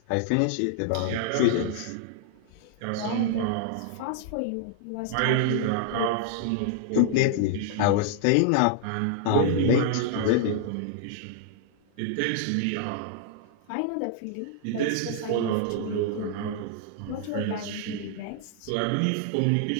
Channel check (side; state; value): both; different; correlation -0.01